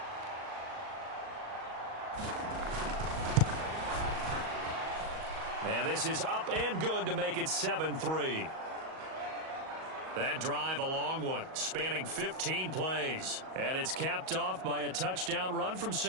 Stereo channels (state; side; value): late; left; 38 ms